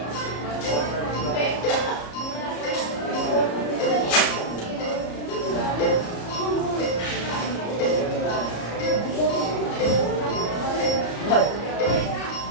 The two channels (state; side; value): late; right; 34 ms